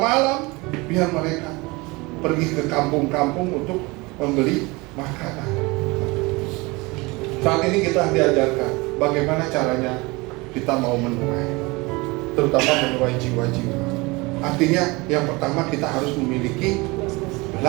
biar mereka pergi ke kampung-kampung untuk membeli makanan. Saat ini kita diajarkan bagaimana caranya kita mau menuai, terutama menuai jiwa-jiwa. Artinya yang pertama kita harus memiliki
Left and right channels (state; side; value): quieter; left; 24.4 dB